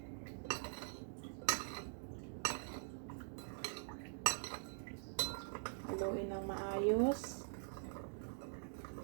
Haluin ng maayos.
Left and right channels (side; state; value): left; silent; digital silence